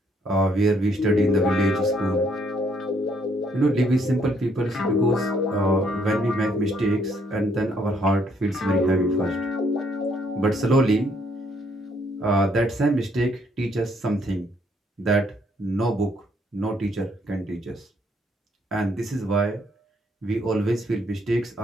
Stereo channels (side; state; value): both; normal; correlation 0.69